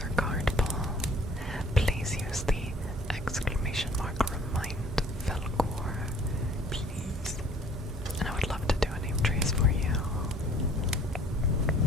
or card pull. Please use the exclamation mark remind Faolkor, please. And I would love to do a name trace for you.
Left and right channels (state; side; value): normal; both; correlation 0.55